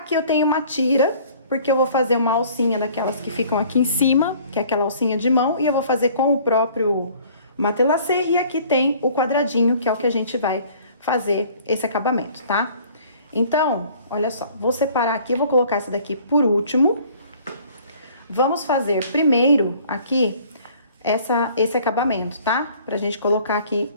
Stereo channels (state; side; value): inverted; both; correlation -0.54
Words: eu tenho uma tira, porque eu vou fazer uma alcinha daquelas que ficam aqui em cima, que é aquela alcinha de mão, e eu vou fazer com o próprio matelassê, e aqui tem o quadradinho, que é o que a gente vai fazer esse acabamento, tá? Então, olha só, vou separar aqui, vou colocar essa daqui por último. Vamos fazer primeiro aqui esse acabamento, tá? Pra gente colocar aqui